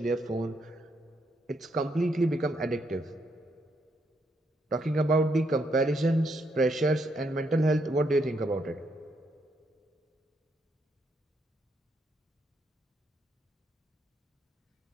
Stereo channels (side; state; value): both; normal; correlation 0.76